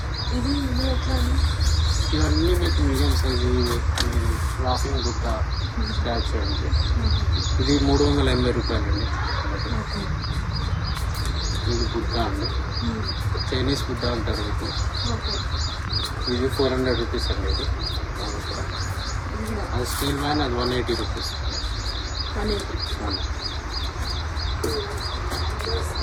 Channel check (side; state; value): both; identical; correlation 1.00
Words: ఇది ఎట్లా అండి? ఇవన్నీ మీకు మీడియం సైజు లాఫింగ్ బుట్ట స్టాచ్యూ అండి. ఇది 380 రూపాయలండి. ఇది బుట్ట అండి, చైనీస్ బుట్ట అంటారు మీకు. ఇది 400 రూపీస్ అండి. ఇది అది స్టీల్ మ్యాన్, అది 180 రూపీస్.